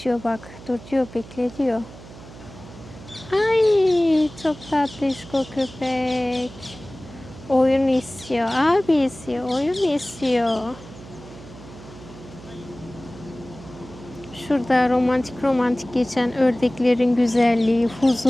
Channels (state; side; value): noise; right; hum, 17 dB below the sound